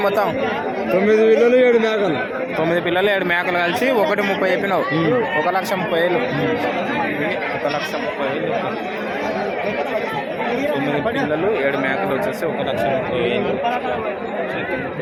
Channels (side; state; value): both; identical; correlation 1.00